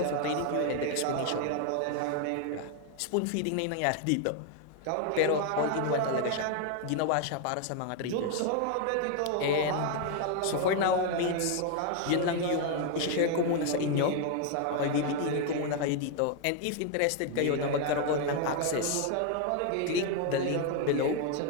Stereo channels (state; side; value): different; both; correlation 0.01